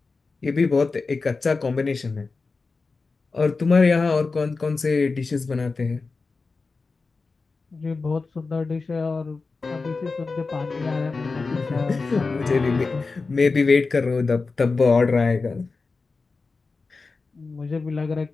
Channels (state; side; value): quieter; right; 4.1 dB